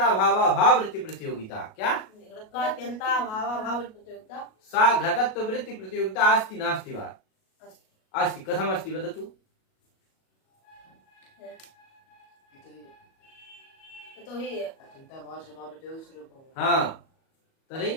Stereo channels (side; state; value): right; late; 37 ms